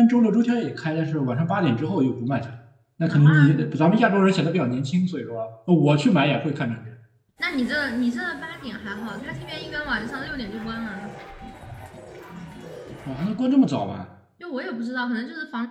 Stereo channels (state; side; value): identical; both; correlation 1.00